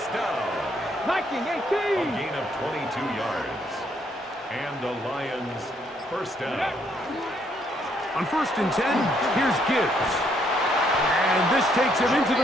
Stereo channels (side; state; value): both; normal; correlation 0.71